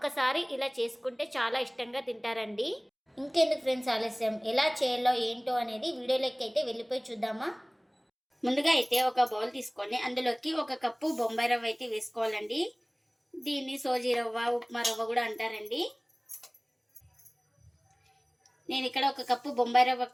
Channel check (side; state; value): both; identical; correlation 1.00